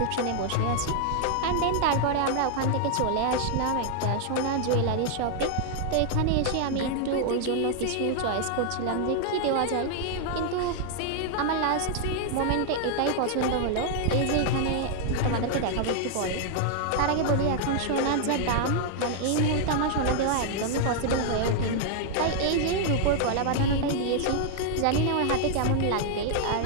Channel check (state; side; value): different; both; correlation 0.00